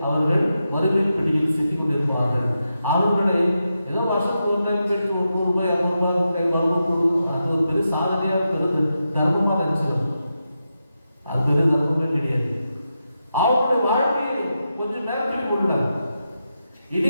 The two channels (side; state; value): both; inverted; correlation -0.87